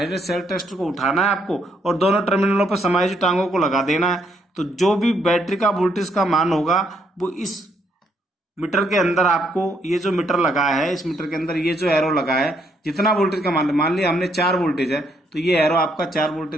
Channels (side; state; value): both; normal; correlation 0.73